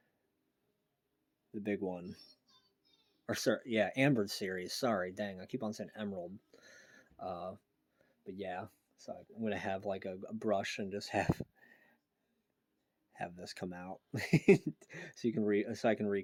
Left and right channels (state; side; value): identical; both; correlation 1.00